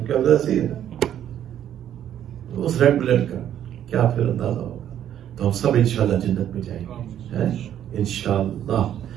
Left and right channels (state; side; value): quieter; left; 10.5 dB